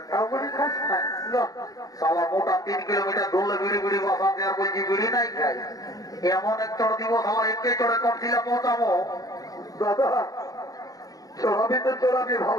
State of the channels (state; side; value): late; right; 0.18 ms